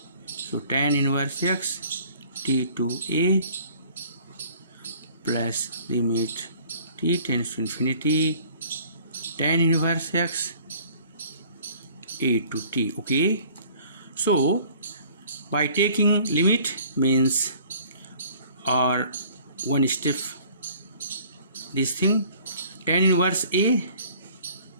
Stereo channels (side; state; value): both; inverted; correlation -0.53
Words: so tan inverse x t to a plus limit t tends to infinity tan inverse x a to t. Okay, so by taking limit means, or one step this thing, tan inverse a